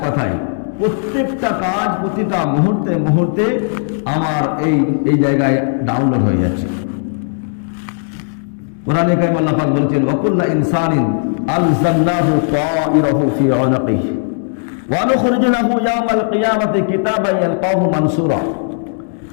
কথায় প্রত্যেকটা কাজ প্রতিটা মুহূর্তে মুহূর্তে আমার এই জায়গায় ডাউনলোড হয়ে যাচ্ছে। কোরআনে কারীম আল্লাহ পাক বলেছেন, ওয়াকুল্লা ইনসানিন আলজামনাহু তাইরাহু ফি উনকিহি ওয়া নুখরিজু লাহু ইয়াওমাল কিয়ামাতি কিতাবান ইয়ালকাহু মানসুরা।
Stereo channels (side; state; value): right; silent; 67 dB below the other